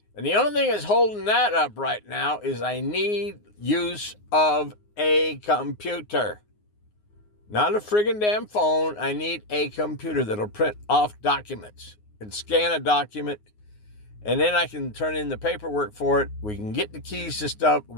and the only thing that's holding that up right now is I need use of a computer. Not a friggin' damn phone. I need a computer that'll print off documents and scan a document. And then I can turn in the paperwork for it. We can get the keys to stuff.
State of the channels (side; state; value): right; late; 9.6 ms